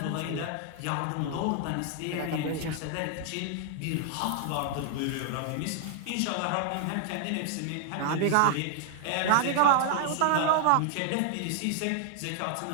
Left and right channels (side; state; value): both; different; correlation 0.00